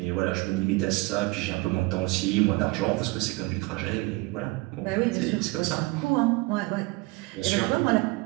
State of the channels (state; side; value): quieter; left; 23.4 dB